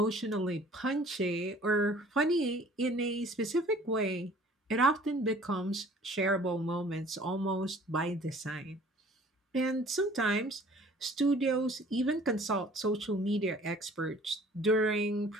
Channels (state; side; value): normal; both; correlation 0.52